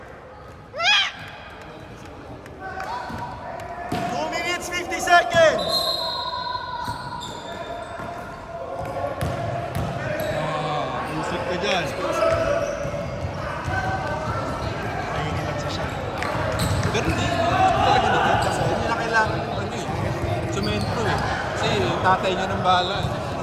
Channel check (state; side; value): identical; both; correlation 1.00